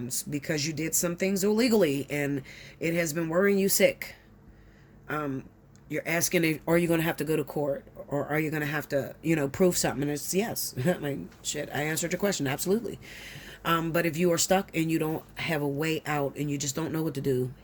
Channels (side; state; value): both; identical; correlation 1.00